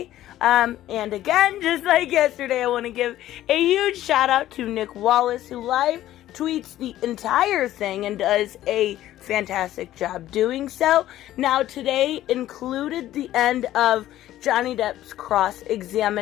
And again, just like yesterday, I want to give a huge shout out to Nick Wallis, who live tweets the entire thing and does a fantastic job doing so. Now, today included the end of Johnny Depp's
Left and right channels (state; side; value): quieter; right; 13.7 dB